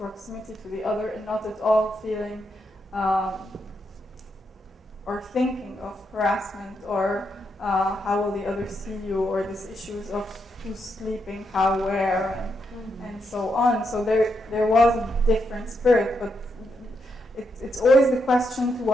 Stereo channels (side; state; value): both; normal; correlation 0.81